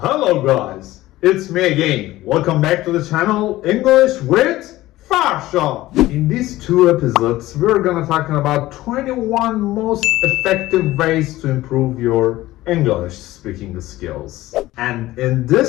guys, it's me again. Welcome back to the channel English with Farsha. In these two episodes, we're gonna talk about 21 most effective ways to improve your English speaking skills. And in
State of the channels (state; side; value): quieter; right; 16.7 dB